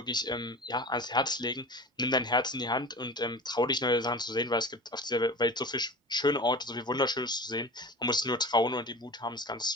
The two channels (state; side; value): normal; both; correlation 0.36